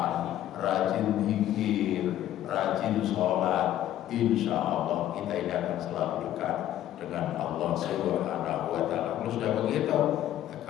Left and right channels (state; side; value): quieter; right; 12.4 dB